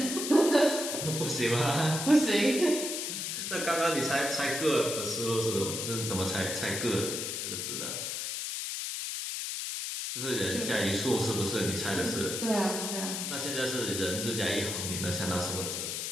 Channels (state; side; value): noise; left; hiss, 3 dB below the sound